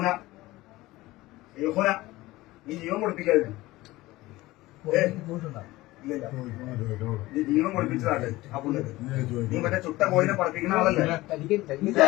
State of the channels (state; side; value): quieter; right; 18.7 dB